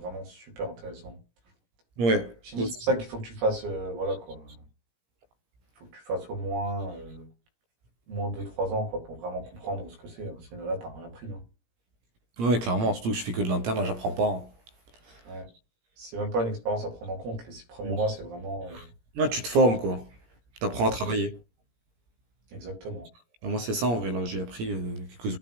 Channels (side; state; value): left; late; 17 ms